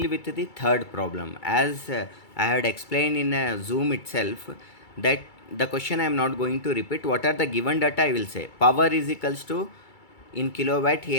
with the third problem. As I had explained in Zoom itself, that the question I am not going to repeat. What are the given data? I will say power is equals to, in kilowatt he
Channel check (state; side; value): late; right; 2.3 ms